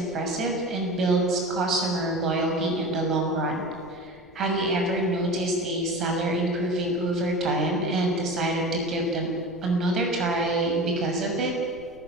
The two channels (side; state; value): left; noise; rumble, 26 dB below the sound